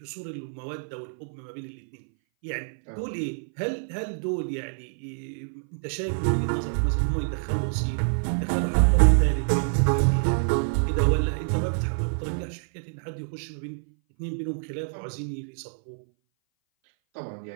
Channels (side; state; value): left; silent; 58 dB below the other